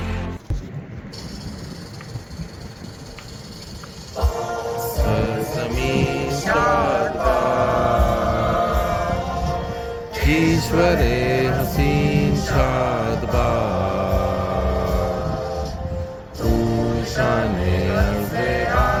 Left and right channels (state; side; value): identical; both; correlation 1.00